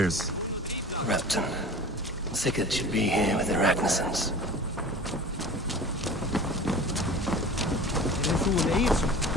Rapton. Sigurd should be here with the Ragnarssons.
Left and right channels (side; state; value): both; normal; correlation 0.39